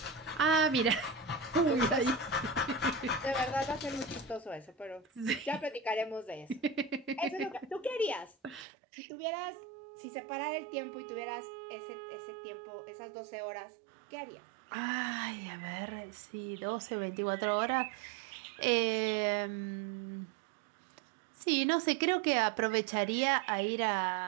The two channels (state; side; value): drops out; left; at 8.7 s